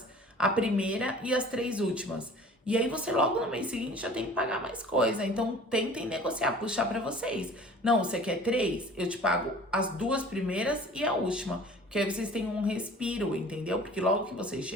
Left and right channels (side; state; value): both; normal; correlation 0.46